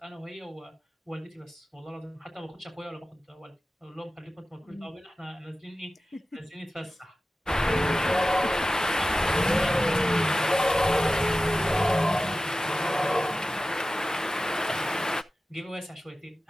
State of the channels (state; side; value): normal; both; correlation 0.95